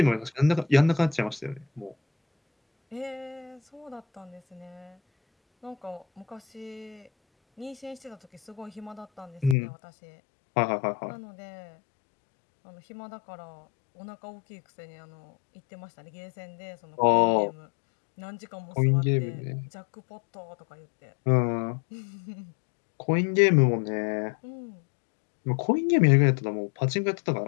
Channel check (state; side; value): drops out; right; at 9.6 s